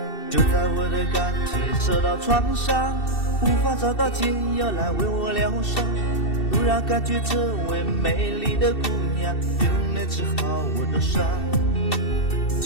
就在我的感情受到创伤，无法找到解药来为我疗伤，突然感觉这位美丽的姑娘就能治好我的伤，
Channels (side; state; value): right; late; 2.7 ms